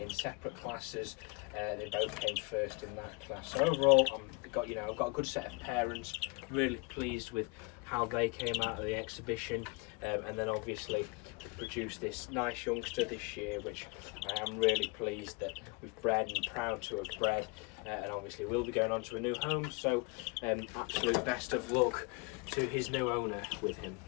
separate classes, they both came first in that class. So overall, I've got a good set of parents. Really pleased with how they came out of the exhibition, and then obviously we produced this nice youngster this year, which I am really pleased that we've bred and proud to have bred, and obviously we'll be going on to a new home, so absolute best of luck to his new owner with him.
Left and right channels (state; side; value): quieter; right; 29.7 dB